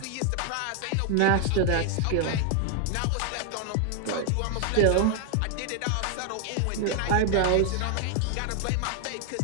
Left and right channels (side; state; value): both; different; correlation 0.00